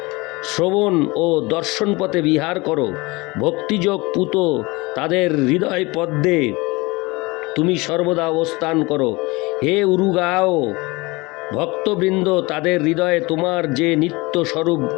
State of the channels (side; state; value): right; quieter; 23.9 dB